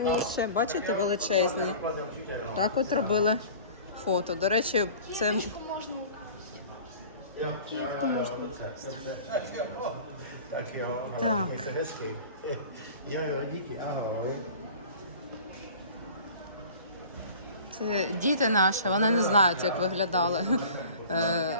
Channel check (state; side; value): inverted; both; correlation -0.42